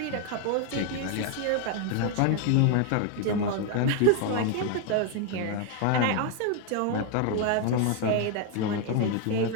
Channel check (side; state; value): both; different; correlation 0.01